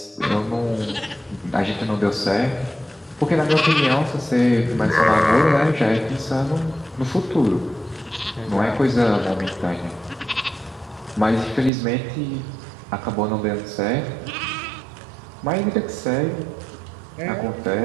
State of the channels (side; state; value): left; drops out; at 11.7 s